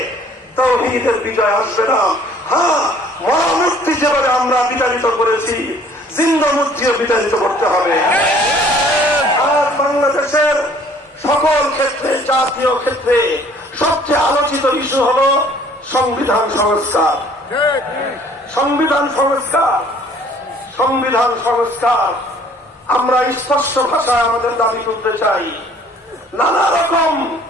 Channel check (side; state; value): both; normal; correlation 0.56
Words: তাওহীদের বিজয় আসবে না। হ্যাঁ, মরা মূর্তি যেভাবে আমরা বিতাড়িত করেছি, জিন্দা মূর্তিও বিতাড়িত করতে হবে। আর বাংলাদেশের সকল ক্ষেত্রে, জাতীয় ক্ষেত্রে সবচেয়ে আলোচিত ইস্যু হলো সংবিধান সংস্কার। সংবিধান সংস্কার, সংবিধান সংস্কার। আমরা স্পষ্ট ভাষায় আমাদের দাবি তুলতে চাই। নানা রকম